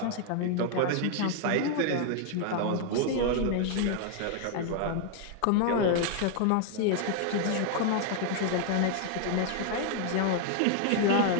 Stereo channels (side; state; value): both; different; correlation 0.00